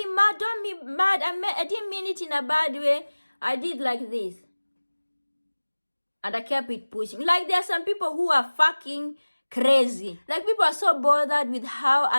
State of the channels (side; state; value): both; inverted; correlation -1.00